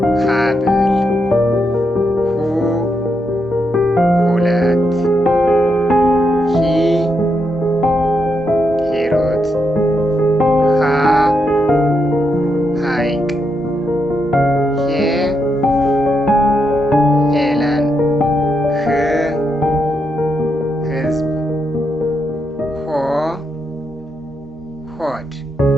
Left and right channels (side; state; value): both; normal; correlation 0.82